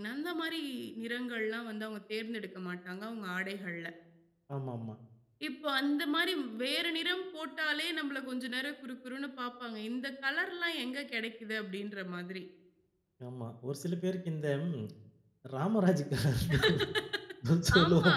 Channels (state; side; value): identical; both; correlation 1.00